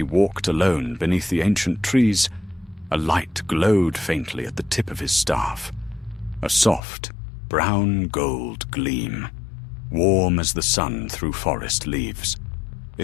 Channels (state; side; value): drops out; right; at 6.8 s